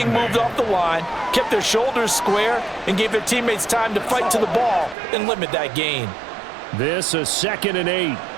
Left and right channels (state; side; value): drops out; left; at 5.0 s